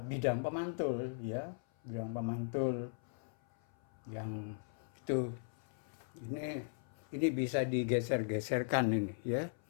pemantul, ya, bidang pemantul yang itu ini bisa digeser-geserkan ini, ya.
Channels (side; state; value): right; silent; 52 dB below the other